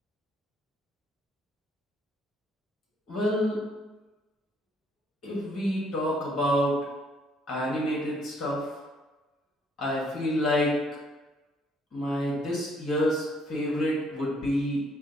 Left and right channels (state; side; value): normal; both; correlation 0.67